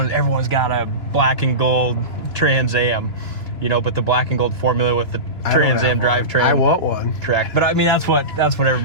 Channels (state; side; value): late; right; 2.9 ms